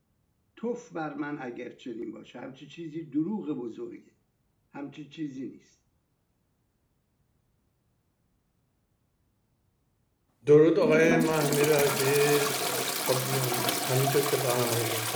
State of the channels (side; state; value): both; identical; correlation 1.00